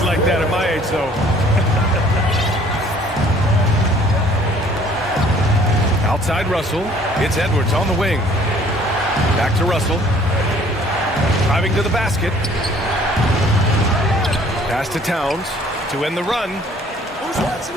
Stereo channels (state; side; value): normal; both; correlation 0.56